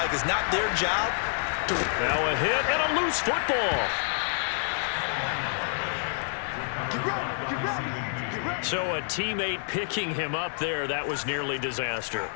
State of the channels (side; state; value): right; silent; digital silence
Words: it's not their job to... Now a hit and a loose football. So a teammate picking him up there, that was nearly disaster.